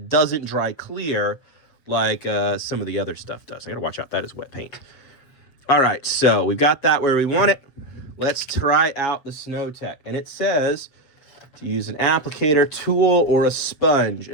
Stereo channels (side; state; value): right; late; 7.3 ms